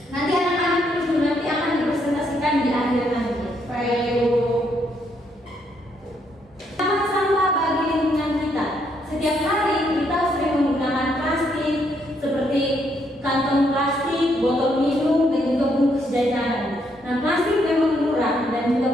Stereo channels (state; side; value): normal; both; correlation 0.74